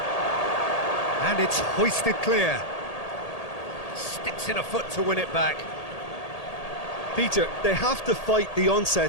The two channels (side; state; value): right; late; 1.8 ms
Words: And it's hoisted clear. Sticks in a foot to win it back. Peter, they have to fight the